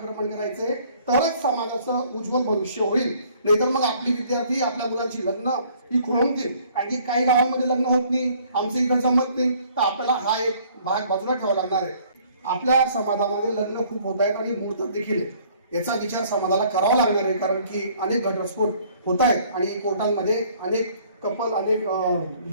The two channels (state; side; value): inverted; both; correlation -0.58